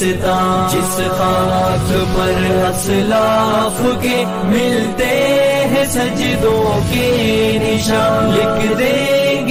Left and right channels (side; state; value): both; identical; correlation 1.00